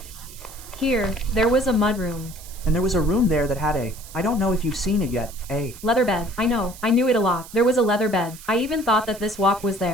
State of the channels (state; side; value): noise; right; hiss, 17 dB below the sound